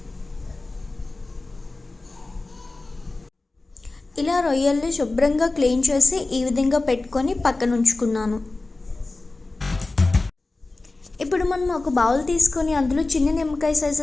ఇలా రొయ్యల్ని శుభ్రంగా క్లీన్ చేసి ఈ విధంగా పెట్టుకొని పక్కన ఉంచుకున్నాను. ఇప్పుడు మనం ఒక బౌల్ తీసుకొని అందులో చిన్న నిమ్మకాయ సైజ్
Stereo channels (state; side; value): quieter; right; 3.2 dB